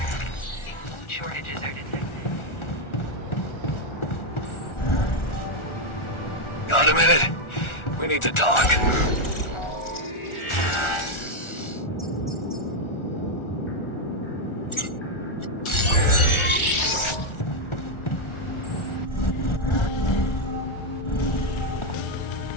Food shortages are detected. Got a minute? We need to talk.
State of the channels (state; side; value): late; right; 1.4 ms